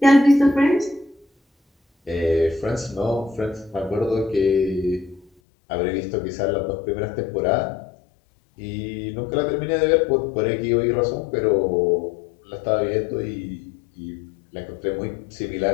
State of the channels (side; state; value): right; drops out; at 5.3 s